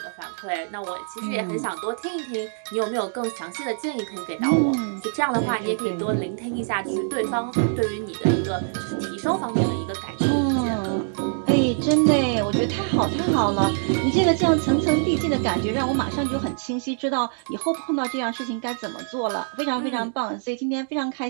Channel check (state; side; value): silent; left; digital silence